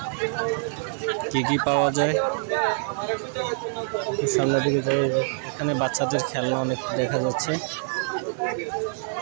কি কি পাওয়া যায়। সামনের দিকে যাই, এখানে বাচ্চাদের খেলনা অনেক দেখা যাচ্ছে,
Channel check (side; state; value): left; silent; 61 dB below the other